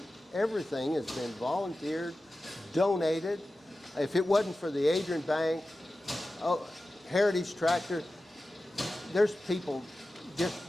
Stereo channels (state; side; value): normal; both; correlation 0.94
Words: Everything has been volunteered, donated. If it wasn't for the Adrian Bank, Heritage Tractor, there's people